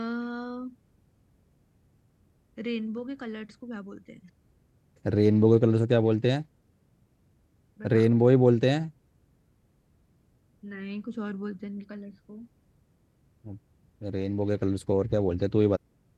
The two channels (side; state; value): both; identical; correlation 1.00